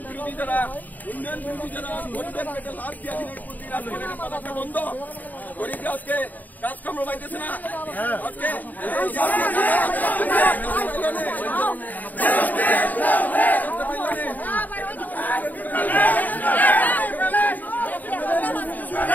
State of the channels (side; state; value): right; late; 0.083 ms